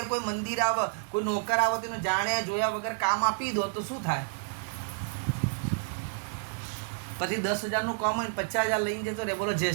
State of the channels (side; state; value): left; silent; digital silence